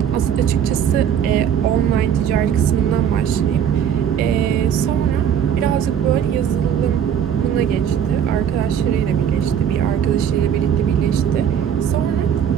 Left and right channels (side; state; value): left; quieter; 8.7 dB